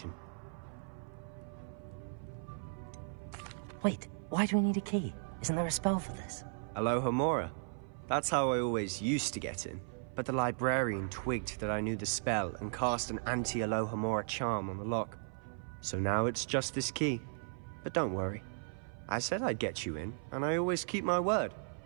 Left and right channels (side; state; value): left; silent; 54 dB below the other